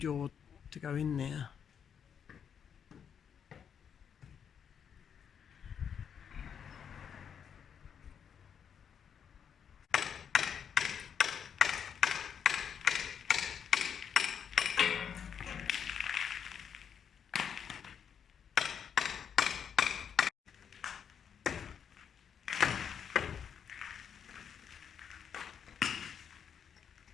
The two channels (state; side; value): quieter; right; 7.7 dB